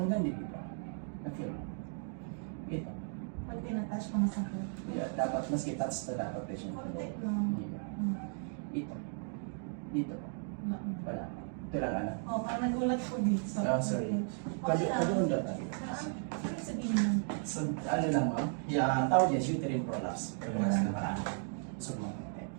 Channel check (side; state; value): left; silent; 54 dB below the other